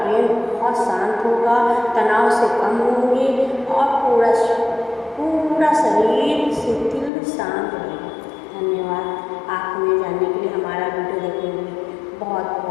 बहुत शांत होगा, तनाव से कम होंगे और पूरा शरीर शिथिल शांत रहेगा। धन्यवाद। आप हमें जानने के लिए, हमारा वीडियो देखने के लिए बहुत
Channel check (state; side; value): drops out; right; at 7.1 s